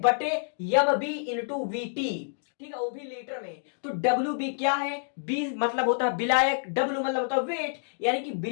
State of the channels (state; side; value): silent; right; digital silence